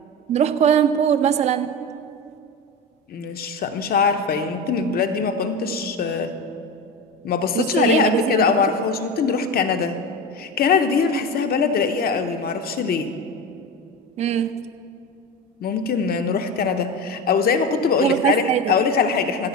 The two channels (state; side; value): normal; both; correlation 0.23